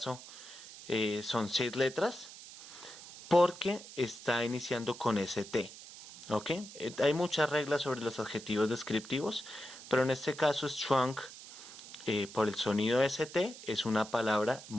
son 6 letras, porque está iniciando con ST. ¿Ok? Hay muchas reglas sobre los adjetivos descriptivos, pero en este caso strong, por el sonido ST, es una palabra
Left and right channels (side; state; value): right; noise; hiss, 15 dB below the sound